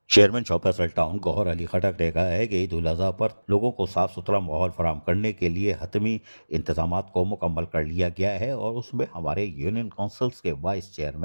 Chairman shop Faisal town گوہر علی خٹک نے کہا ہے کہ عید الاضحیٰ پر لوگوں کو صاف ستھرا ماحول فراہم کرنے کے لیے حتمی انتظامات کو مکمل کر لیا گیا ہے، اور اس میں ہمارے یونین کونسلز کے وائس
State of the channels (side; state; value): both; inverted; correlation -1.00